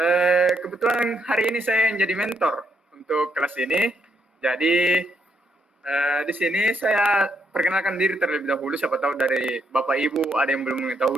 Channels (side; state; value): both; normal; correlation 0.76